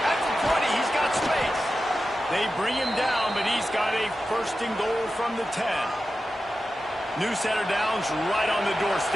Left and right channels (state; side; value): normal; both; correlation 0.92